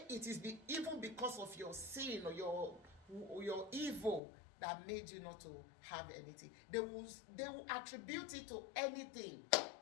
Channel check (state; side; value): drops out; right; at 4.2 s